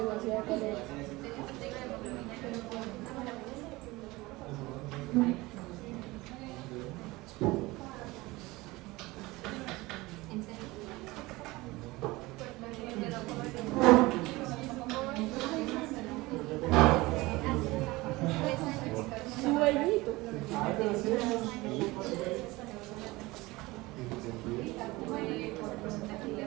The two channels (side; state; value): left; quieter; 21.1 dB